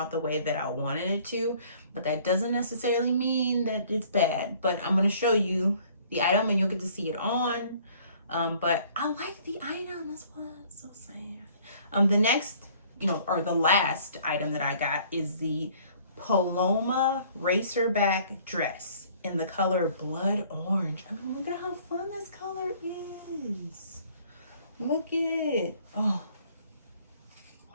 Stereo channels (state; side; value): inverted; both; correlation -0.56